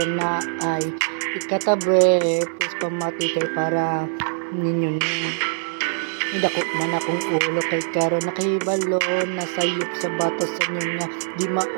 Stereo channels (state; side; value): silent; left; 64 dB below the other